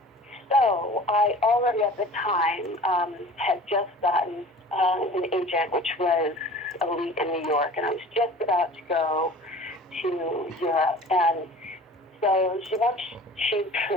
So I already at the time had just gotten an agent, which was Elite in New York, and I was just about to go to Europe. And so she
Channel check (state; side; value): normal; both; correlation 0.43